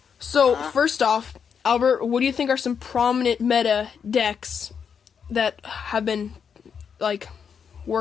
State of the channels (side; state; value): right; quieter; 6.9 dB